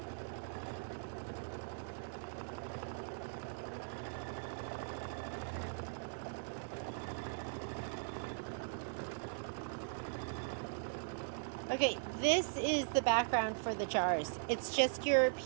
Okay, this is the background for the jars. It's just your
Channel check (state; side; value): silent; left; digital silence